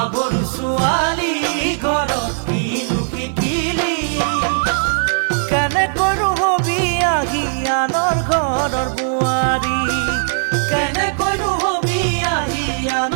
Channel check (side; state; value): left; silent; digital silence